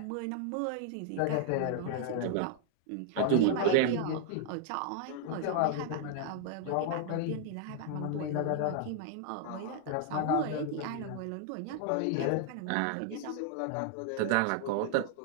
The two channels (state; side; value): different; both; correlation -0.01